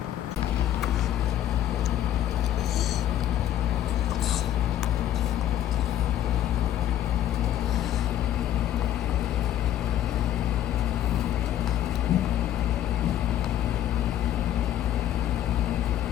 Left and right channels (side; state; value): right; quieter; 11.8 dB